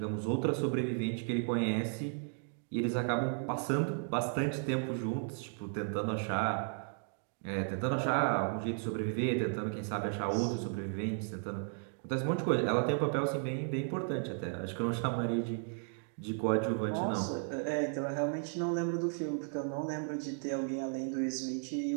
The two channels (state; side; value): silent; left; 55 dB below the other